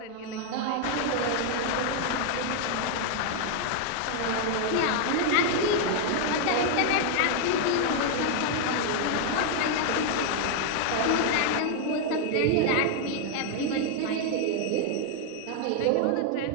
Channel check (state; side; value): different; both; correlation 0.00